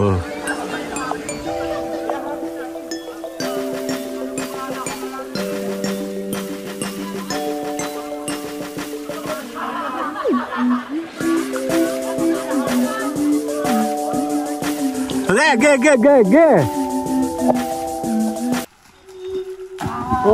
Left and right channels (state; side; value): identical; both; correlation 1.00